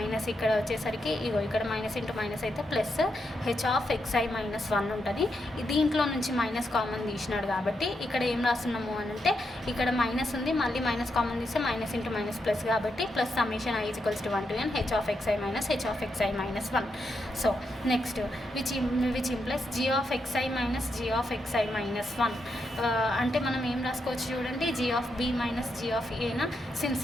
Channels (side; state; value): both; normal; correlation 0.83